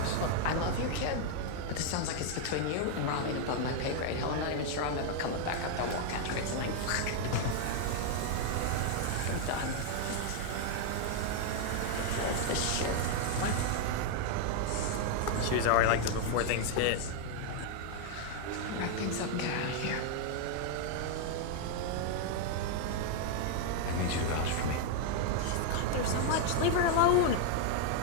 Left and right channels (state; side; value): different; both; correlation 0.00